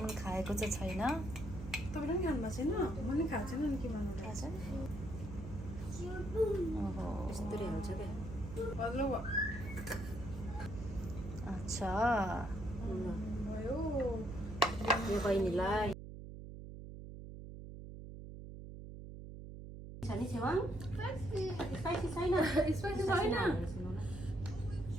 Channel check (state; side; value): noise; right; hum, 11 dB below the sound